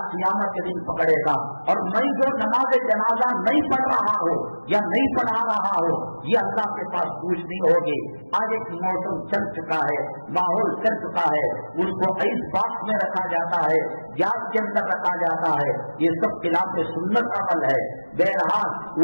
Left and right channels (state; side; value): inverted; both; correlation -1.00